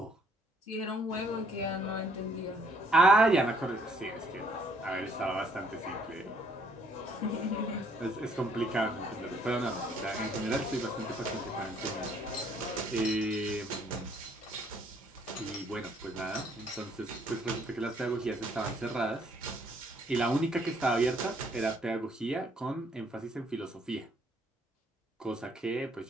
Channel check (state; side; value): normal; both; correlation 0.65